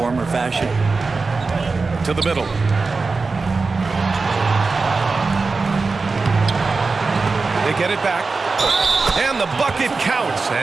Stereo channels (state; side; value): quieter; left; 4.1 dB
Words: or fashion? To the middle. They get it back. And the bucket counts.